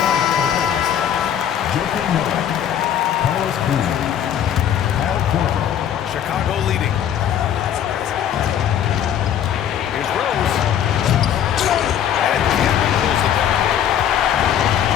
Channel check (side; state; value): right; quieter; 9.7 dB